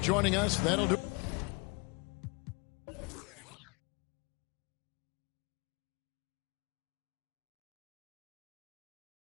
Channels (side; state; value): right; quieter; 28.7 dB